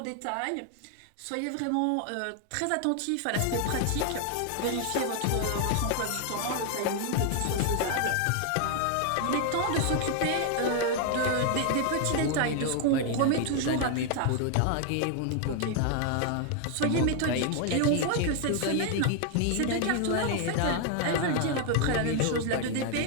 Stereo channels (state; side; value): different; both; correlation 0.00